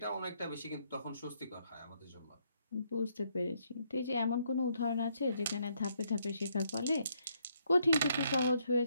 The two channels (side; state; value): both; inverted; correlation -0.73